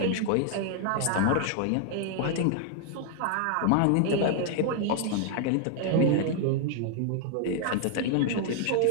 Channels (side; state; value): both; different; correlation 0.00